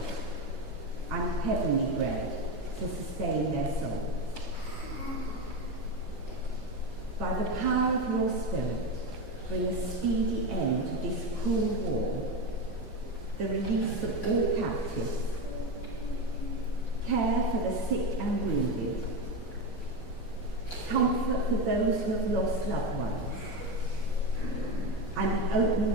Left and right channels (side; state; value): both; normal; correlation 0.17